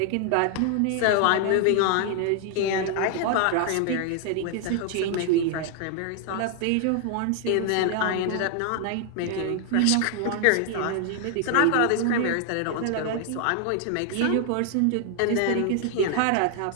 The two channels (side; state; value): both; different; correlation 0.00